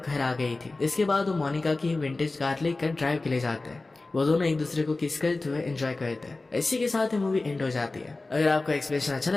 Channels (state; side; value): quieter; right; 3.3 dB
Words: घर आ गई थी। इसके बाद वो मोनिका की विंटेज कार लेकर ड्राइव के लिए जाते हैं। वो दोनों एक दूसरे को किस करते हुए एंजॉय करते हैं। इसी के साथ ही मूवी एंड हो जाती है। अगर आपको एक्सप्लेनेशन अच्छा